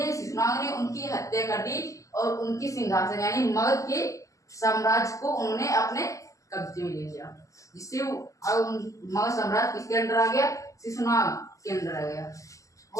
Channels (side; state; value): right; late; 0.16 ms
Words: शिशुनाग ने उनकी हत्या कर दी और उनकी सिंहासन यानी मगध के साम्राज्य को उन्होंने अपने कब्जे में ले लिया, जिससे मगध साम्राज्य किसके अंदर आ गया? शिशुनाग के अंदर आ गया।